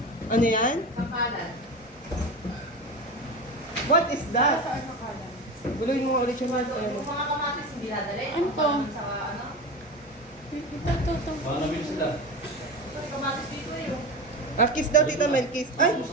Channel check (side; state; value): both; normal; correlation 0.26